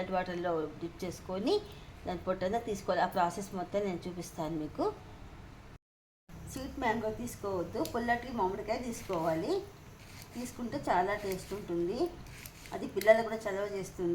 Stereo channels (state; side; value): identical; both; correlation 1.00